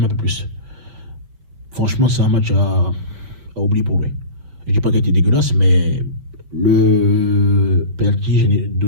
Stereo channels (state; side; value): late; left; 5.9 ms